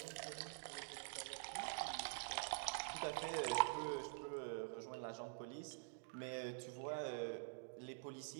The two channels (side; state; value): left; silent; digital silence